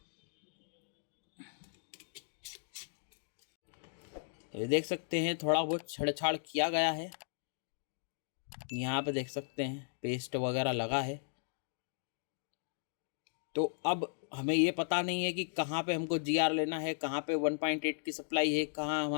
तो ये देख सकते हैं थोड़ा बहुत छेड़छाड़ किया गया है। यहाँ पे देख सकते हैं पेस्ट वगैरह लगा है। तो अब हमें ये पता नहीं है कि कहाँ पे हमको GR लेना है, कहाँ पे 1.8 की सप्लाई है, कहाँ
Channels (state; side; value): silent; right; digital silence